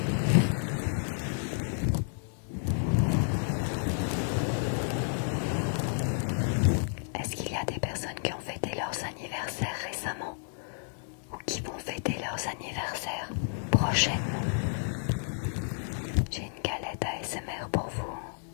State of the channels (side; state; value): right; silent; digital silence